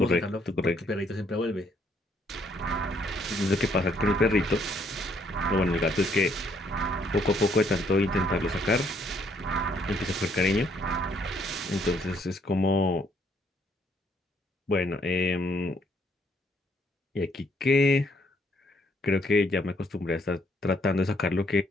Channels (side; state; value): both; normal; correlation 0.69